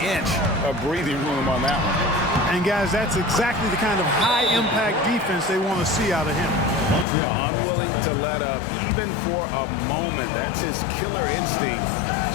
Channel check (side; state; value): right; drops out; at 7.1 s